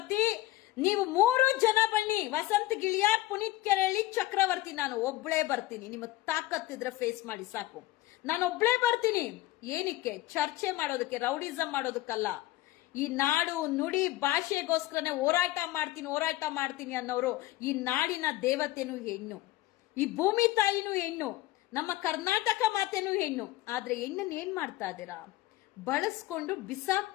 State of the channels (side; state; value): right; quieter; 16.9 dB